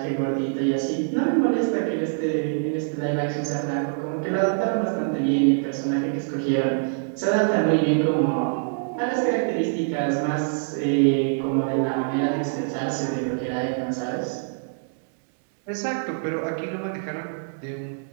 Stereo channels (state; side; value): silent; left; digital silence